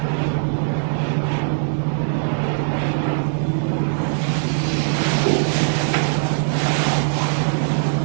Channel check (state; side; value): silent; left; 65 dB below the other